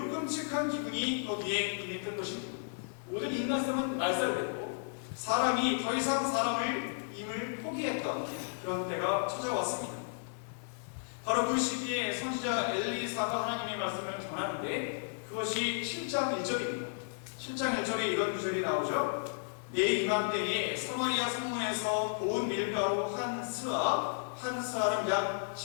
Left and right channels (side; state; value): right; silent; 55 dB below the other